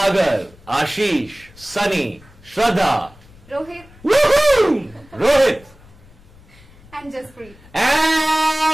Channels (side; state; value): left; noise; rumble, 25 dB below the sound